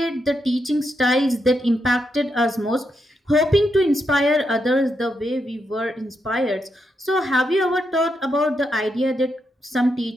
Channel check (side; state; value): both; normal; correlation 0.82